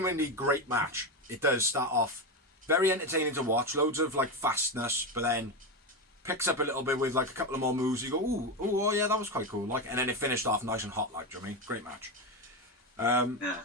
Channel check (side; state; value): both; normal; correlation 0.14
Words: great match. It does start off very entertaining to watch. Loads of like fastness, but then picks up a little bit with like a couple of more moves. You go, ooh, oh yeah, that was quite cool. Like, and then it finished off nice and hot. Like, do you know what I mean? Great match.